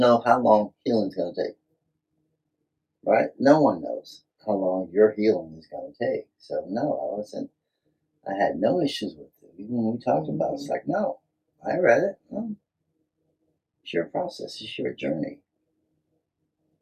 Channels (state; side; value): identical; both; correlation 1.00